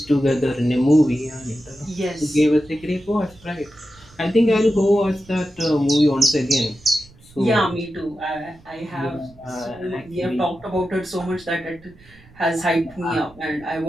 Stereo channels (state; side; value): noise; right; rumble, 25 dB below the sound